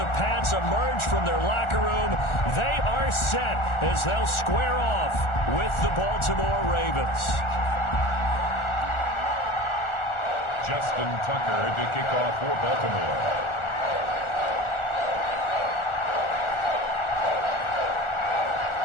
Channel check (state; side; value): late; right; 1.4 ms